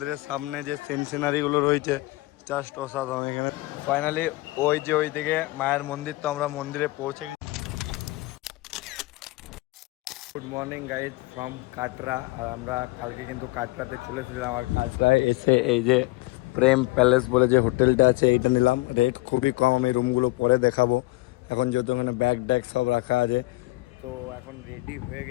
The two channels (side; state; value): right; quieter; 21.5 dB